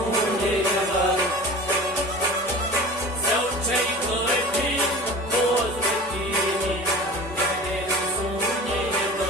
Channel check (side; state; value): both; normal; correlation 0.37